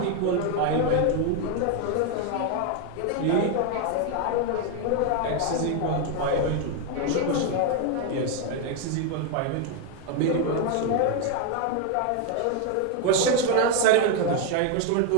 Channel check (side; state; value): both; different; correlation 0.01